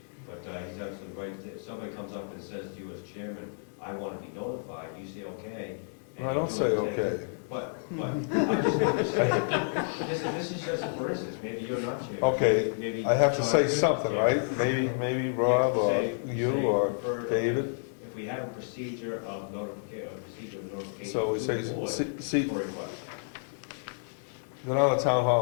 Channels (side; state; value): right; silent; digital silence